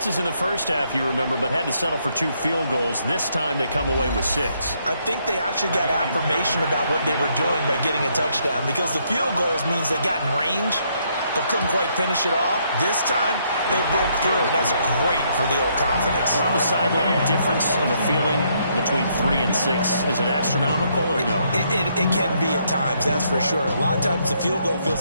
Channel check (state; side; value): inverted; both; correlation -0.72